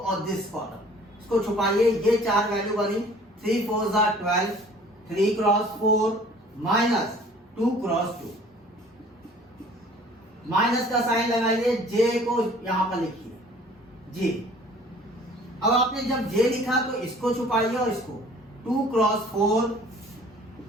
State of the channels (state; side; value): normal; both; correlation 0.51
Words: दिस कॉलम, इसको छुपाइए। ये चार वैल्यू बनी, 3 4 12, 3 क्रॉस 4 माइनस 2 क्रॉस 2, माइनस का साइन लगाइए, J को यहां पर लिखिए J। अब आपने जब J लिखा तो इसको छुपाइए और इसको 2 क्रॉस 4